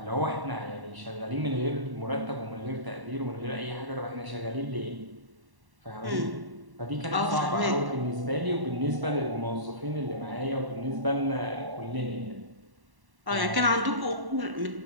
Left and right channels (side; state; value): left; late; 1.1 ms